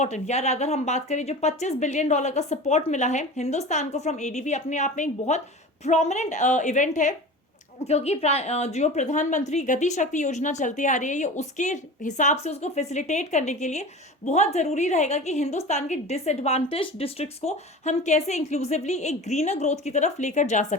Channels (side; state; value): both; normal; correlation 0.34